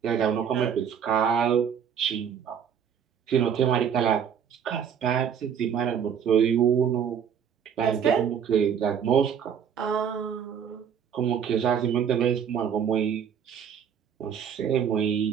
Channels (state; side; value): quieter; left; 8.0 dB